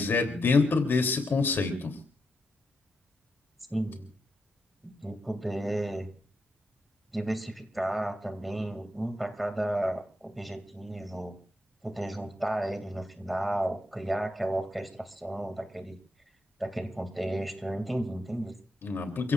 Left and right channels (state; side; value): normal; both; correlation 0.83